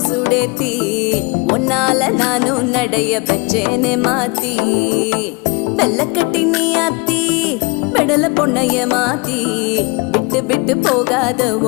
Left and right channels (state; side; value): quieter; right; 28.6 dB